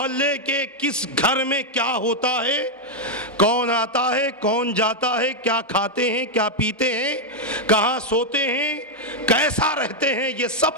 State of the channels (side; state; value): both; normal; correlation 0.00